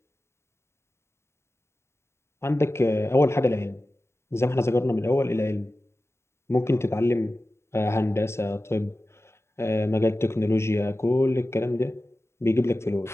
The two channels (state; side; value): late; right; 0.13 ms